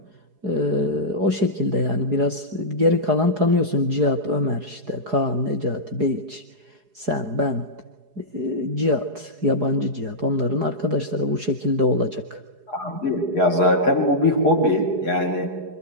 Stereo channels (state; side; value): late; left; 4.8 ms